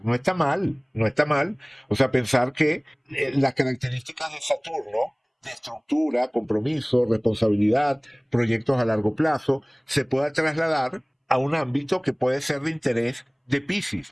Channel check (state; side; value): identical; both; correlation 1.00